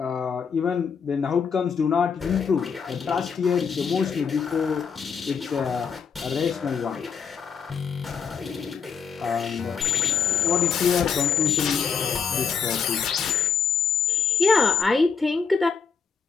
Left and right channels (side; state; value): right; quieter; 6.3 dB